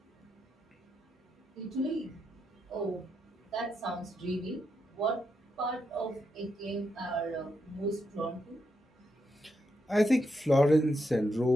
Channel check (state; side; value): normal; both; correlation 0.82